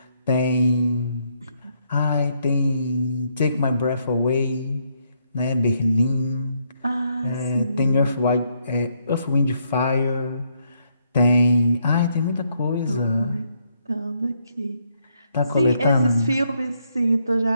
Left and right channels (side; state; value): both; inverted; correlation -0.74